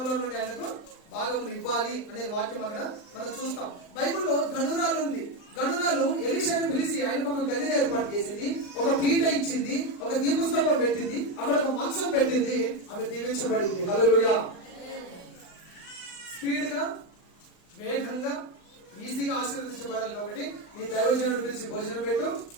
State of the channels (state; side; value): late; right; 39 ms